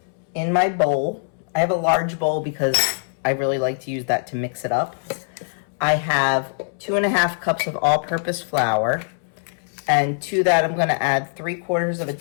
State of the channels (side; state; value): right; silent; 64 dB below the other